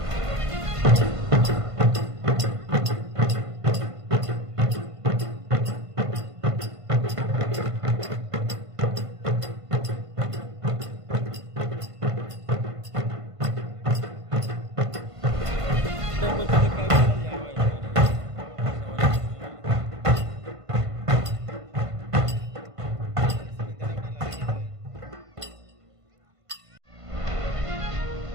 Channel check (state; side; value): late; left; 1.5 ms